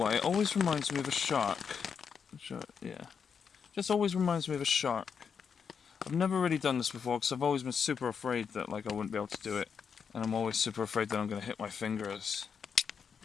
why, it always reminds me of a shark. Yeah, just always reminds me of a shark. I've never really done this before, because I've always been super afraid that like I wouldn't be able to do it, and I'm always super afraid that I'm going to hit my fingers.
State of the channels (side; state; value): right; quieter; 6.6 dB